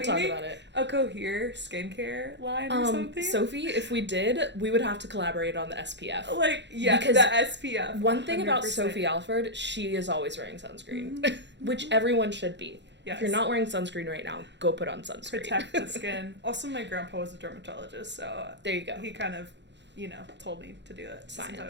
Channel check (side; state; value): left; late; 0.52 ms